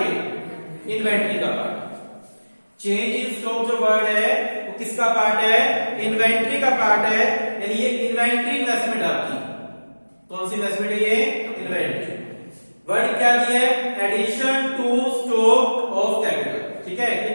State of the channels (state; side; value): inverted; both; correlation -1.00